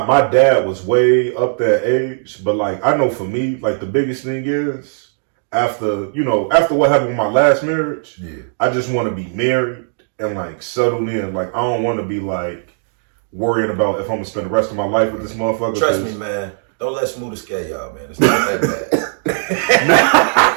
dad was way up that age, but like I know for me, like the biggest thing is after what happened with my last marriage, I just want to be married and like settled in. Like I don't want to be like worrying about if I'm gonna spend the rest of my life with this motherfucker. Trust me, man. Don't let Smooth scare y'all, man. It's not that bad.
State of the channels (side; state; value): left; silent; digital silence